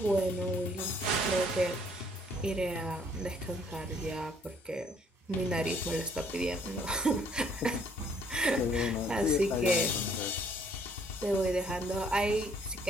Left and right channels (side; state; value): both; normal; correlation 0.63